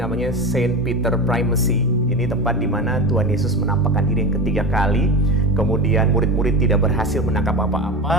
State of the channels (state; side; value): normal; both; correlation 0.23